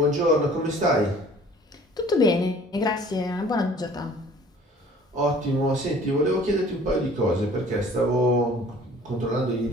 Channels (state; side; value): normal; both; correlation 0.51